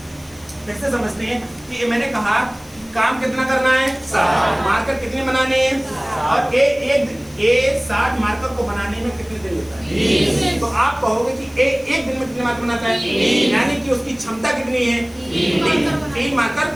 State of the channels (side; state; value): left; noise; hiss, 25 dB below the sound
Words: कैसे समझते हैं कि मैंने कहा काम कितना करना है? 60 मार्कर कितने बनाने हैं? और ए 60 मार्कर को बनाने में कितने दिन लेता है? तो आप कहोगे कि एक दिन में कितने मार्कर बनाता है? यानी कि उसकी क्षमता कितनी है? 3 मार्कर